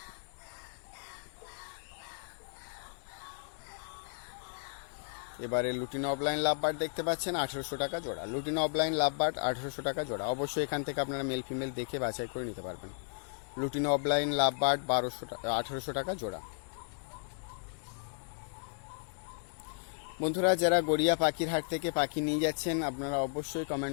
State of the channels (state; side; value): silent; right; digital silence